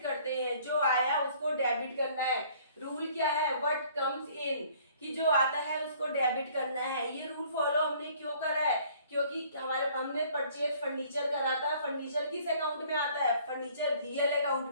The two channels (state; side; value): inverted; both; correlation -0.57